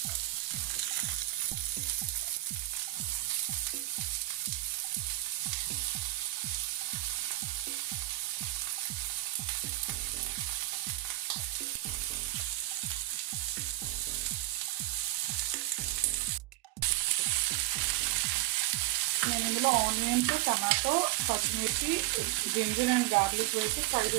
నేను ఇందులో ఆనియన్స్, టమాటో, పచ్చిమిర్చి, జింజర్ అండ్ గార్లిక్ వేసి ఫ్రై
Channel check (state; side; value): quieter; left; 17.1 dB